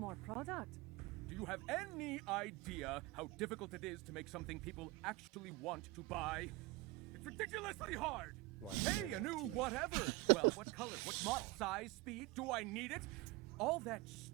product. Do you have any idea how difficult it is to make something people actually want to buy? It's ridiculously hard! Like Hey, a new NFTs. whatever! Well, what color, what model, size, speed, do I need it? All that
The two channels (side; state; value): left; quieter; 21.3 dB